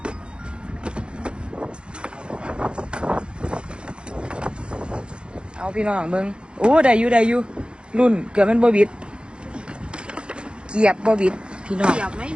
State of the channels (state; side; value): late; left; 0.054 ms